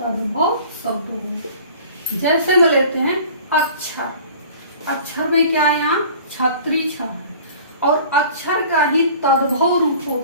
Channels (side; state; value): both; inverted; correlation -0.46